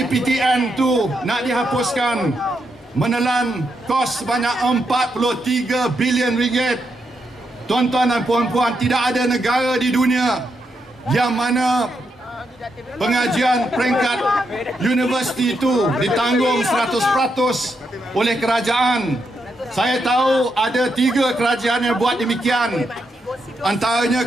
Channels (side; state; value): both; normal; correlation 0.82